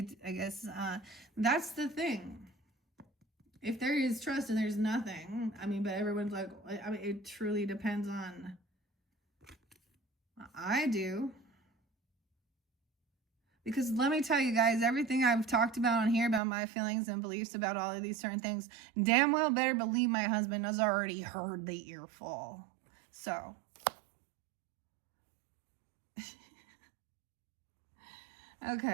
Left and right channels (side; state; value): left; drops out; at 16.4 s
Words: guess that's the thing. If there is trust and there's nothing, I mean, but everyone's like, I mean, it truly depends on. I do. Because let me tell you guys, everything I've talked about on here about my feelings and beliefs about all of these certain things, damn well better believe my husband has already heard the earful. So.